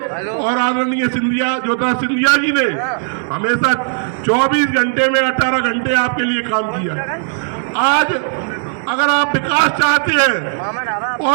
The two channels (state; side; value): silent; left; 69 dB below the other